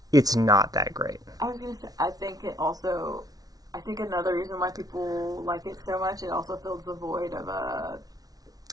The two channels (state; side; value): late; left; 0.18 ms